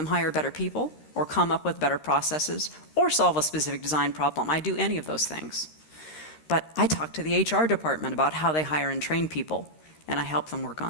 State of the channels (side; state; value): right; late; 13 ms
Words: hire better people, or come up with better processes, or solve a specific design problem, I do any of those things. But I talk to the HR department about how they hire and train people, and I help them work